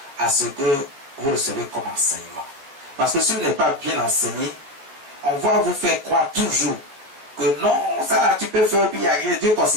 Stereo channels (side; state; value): left; late; 14 ms